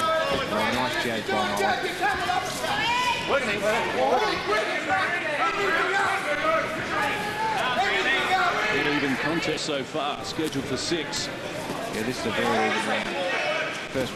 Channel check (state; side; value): identical; both; correlation 1.00